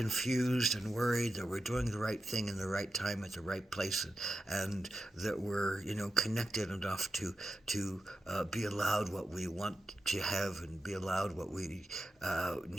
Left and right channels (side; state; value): both; normal; correlation 0.89